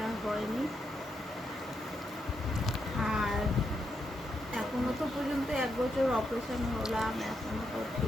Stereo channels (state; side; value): normal; both; correlation 0.82